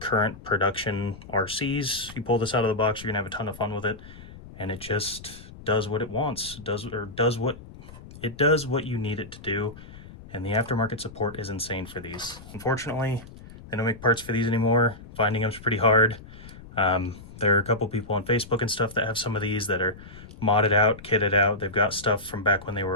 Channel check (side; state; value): left; noise; rumble, 17 dB below the sound